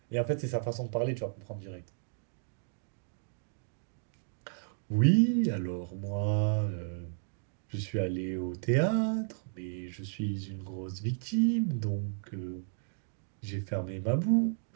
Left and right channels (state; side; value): silent; left; digital silence